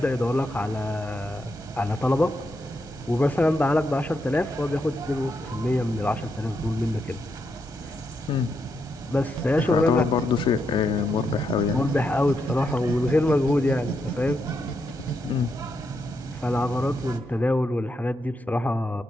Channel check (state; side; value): normal; both; correlation 0.82